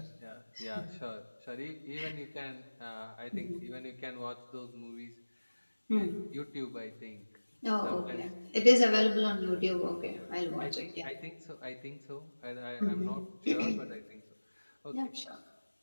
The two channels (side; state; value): both; inverted; correlation -1.00